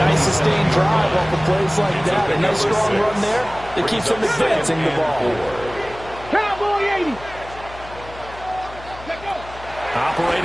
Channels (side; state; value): left; noise; hum, 17 dB below the sound